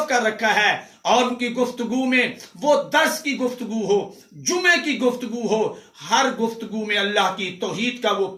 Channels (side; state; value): both; identical; correlation 1.00